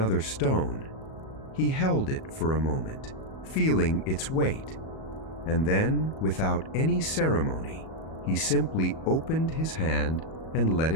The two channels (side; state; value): right; late; 37 ms